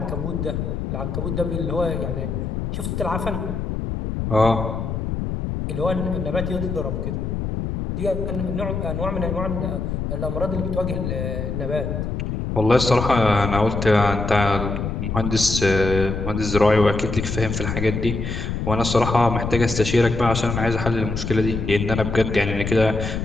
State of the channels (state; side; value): noise; left; rumble, 3 dB below the sound